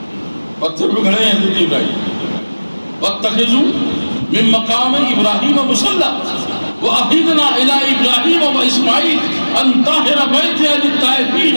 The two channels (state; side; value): inverted; both; correlation -1.00